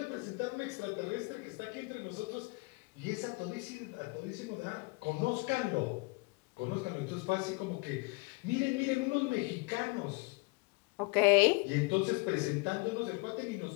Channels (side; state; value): right; quieter; 27.5 dB